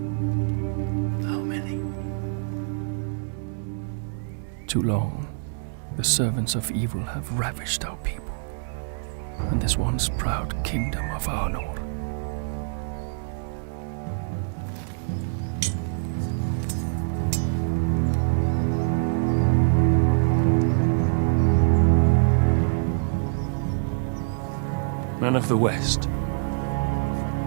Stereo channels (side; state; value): left; silent; digital silence